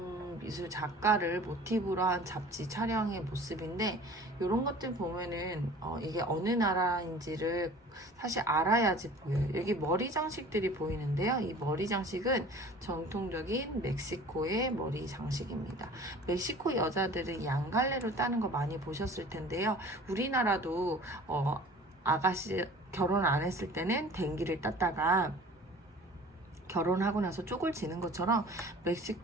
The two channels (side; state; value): both; normal; correlation 0.45